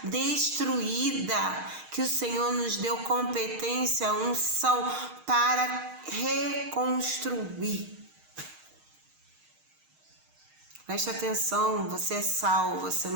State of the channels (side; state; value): left; late; 6.5 ms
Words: destruída, que o Senhor nos deu competência, unção para reconstruir. Preste atenção, você é sal, você